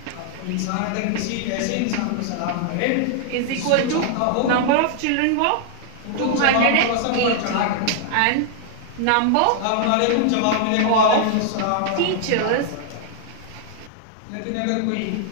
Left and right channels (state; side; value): different; both; correlation 0.00